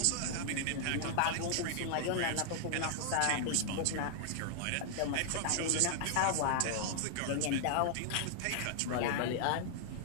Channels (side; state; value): both; different; correlation 0.00